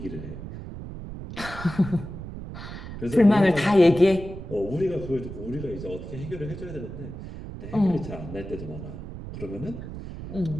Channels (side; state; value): right; noise; rumble, 10 dB below the sound